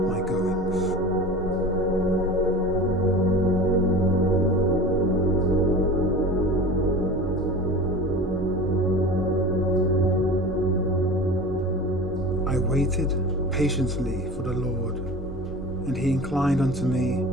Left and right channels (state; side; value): normal; both; correlation 0.35